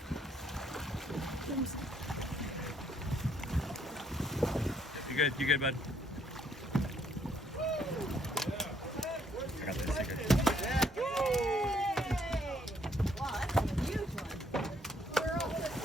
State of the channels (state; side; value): normal; both; correlation 0.67